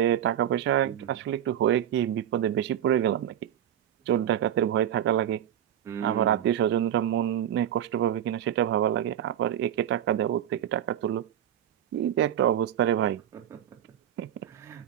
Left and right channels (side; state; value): left; quieter; 10.7 dB